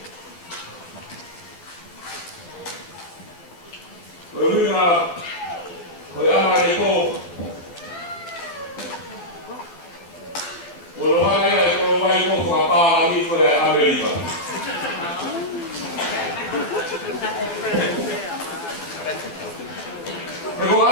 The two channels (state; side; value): late; right; 12 ms